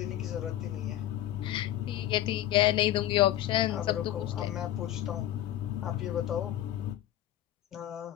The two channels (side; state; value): right; quieter; 13.1 dB